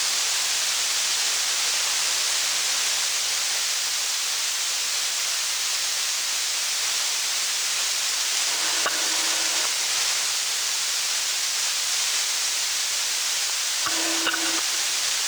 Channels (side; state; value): left; noise; hiss, 10 dB below the sound